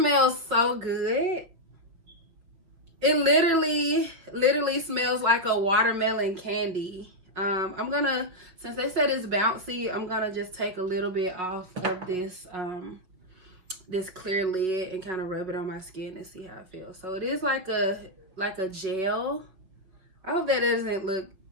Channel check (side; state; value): left; late; 5.6 ms